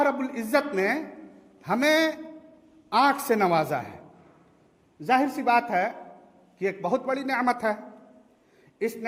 رب العزت نے ہمیں آنکھ سے نوازا ہے۔ ظاہر سی بات ہے कि एक बहुत बड़ी नेमत है। इस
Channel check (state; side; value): identical; both; correlation 1.00